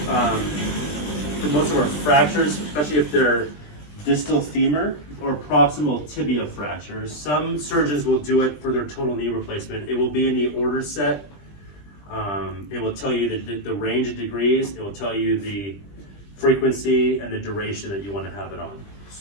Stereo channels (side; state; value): right; late; 20 ms